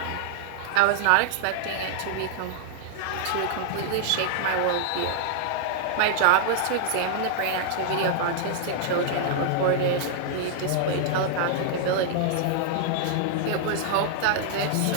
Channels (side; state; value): both; different; correlation -0.01